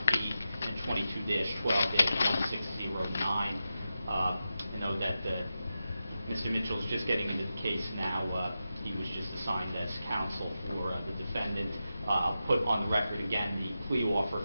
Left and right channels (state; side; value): inverted; both; correlation -0.91